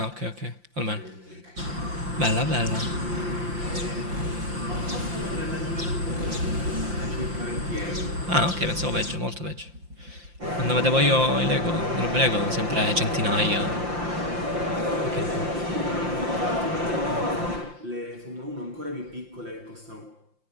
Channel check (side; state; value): left; late; 5.7 ms